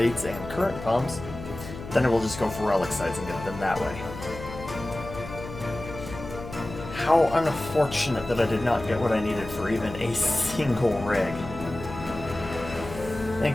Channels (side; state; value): left; noise; hum, 11 dB below the sound